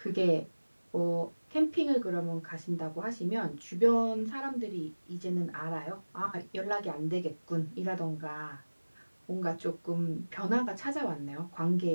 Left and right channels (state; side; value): inverted; both; correlation -1.00